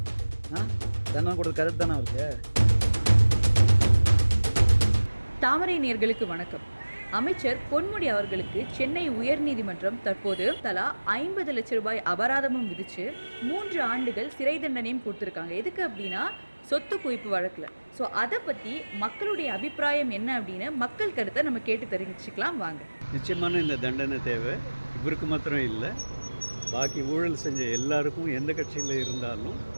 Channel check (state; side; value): inverted; both; correlation -1.00